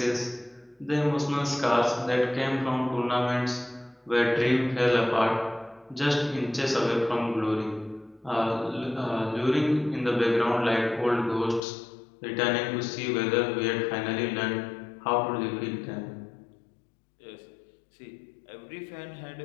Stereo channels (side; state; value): right; drops out; at 11.6 s